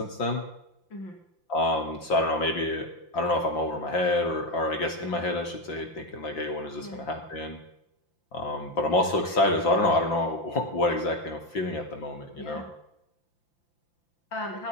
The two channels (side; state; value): right; late; 5.8 ms